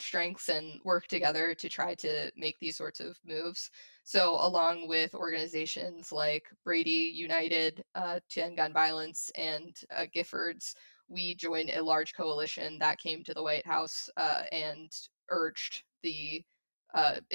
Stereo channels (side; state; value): both; inverted; correlation -1.00